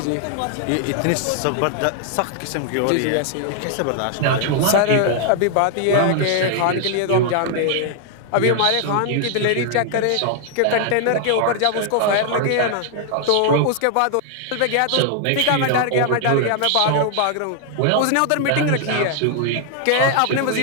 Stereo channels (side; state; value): both; different; correlation 0.00